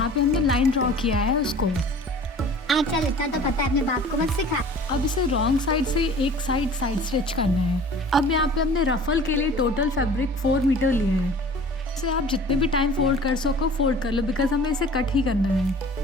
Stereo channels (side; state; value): both; normal; correlation 0.45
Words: पे हमने लाइन ड्रॉ किया है उसको। चल इतना तो पता है, अपने बाप को मत सिखा। अब इसे रॉन्ग साइड से एक साइड स्टिच करना है। अब यहाँ पे हमने रफल के लिए टोटल फैब्रिक 4 मीटर लिया है। इसे आप जितने भी टाइम फोल्ड कर सको फोल्ड कर लो, बिकॉज हमें इसे कट ही करना है।